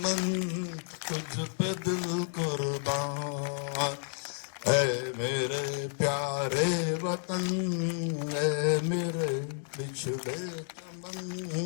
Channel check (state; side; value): silent; right; digital silence